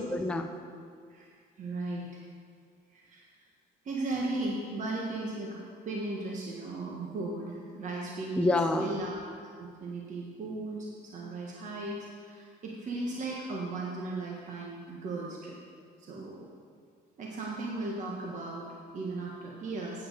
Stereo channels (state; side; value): normal; both; correlation 0.62